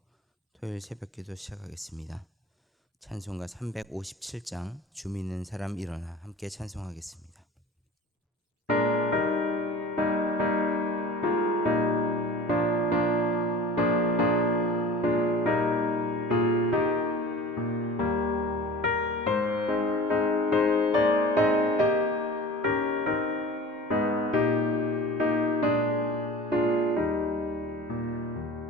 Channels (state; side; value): normal; both; correlation 0.40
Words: 토요일 새벽기도 시작하겠습니다. 찬송가 357장 주 믿는 사람 일어나 함께 찬송하겠습니다.